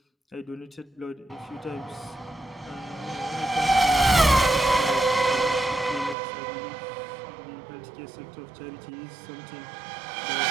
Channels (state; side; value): drops out; left; at 6.2 s